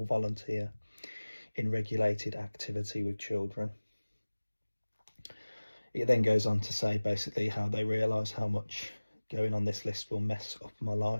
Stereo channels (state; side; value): inverted; both; correlation -1.00